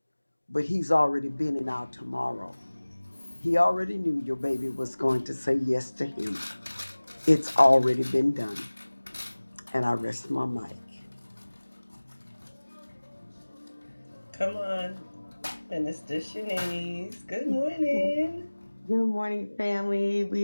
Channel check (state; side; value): inverted; both; correlation -1.00